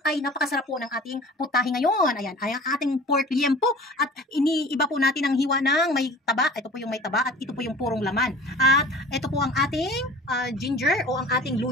ay napakasarap po ng ating putahe ngayon. Ayan, ay ang ating pork liempo. At iniiba po natin ang hiwa ng may taba. Ito po yung may taba at ito po yung purong laman. At ito po ang ating ginger o ang ating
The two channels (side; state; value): both; normal; correlation 0.43